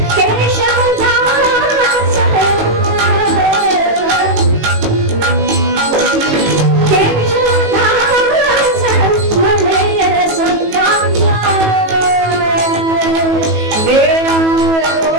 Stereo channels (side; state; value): left; late; 18 ms